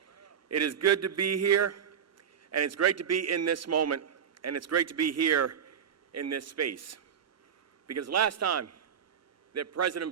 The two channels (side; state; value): left; quieter; 8.0 dB